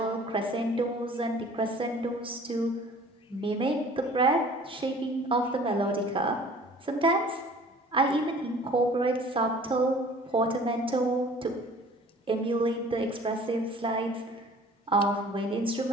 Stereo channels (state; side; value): normal; both; correlation 0.49